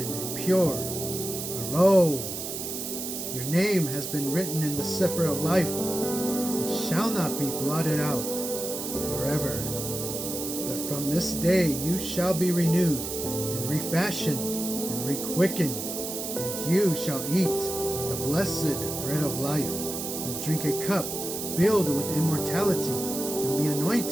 and pure, for lo, your name has been written in the Sefer of life, and shall not be blotted out forever. But from this day you shall be renewed, and refashioned, and requickened, and you shall eat the blessed bread of life, and drink a cup filled with immortality, and be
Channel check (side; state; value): right; noise; hiss, 5 dB below the sound